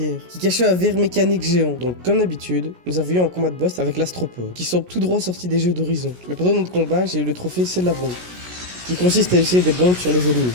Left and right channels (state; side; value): late; left; 17 ms